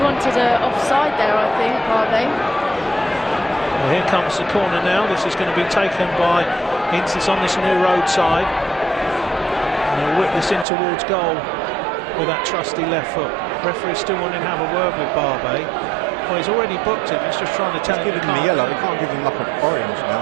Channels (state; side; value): drops out; left; at 10.7 s